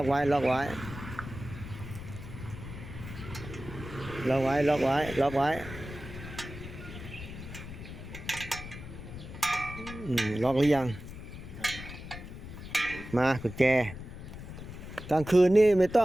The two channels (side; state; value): left; noise; rumble, 11 dB below the sound